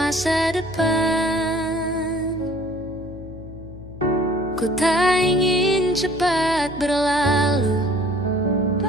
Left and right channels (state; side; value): noise; left; hum, 14 dB below the sound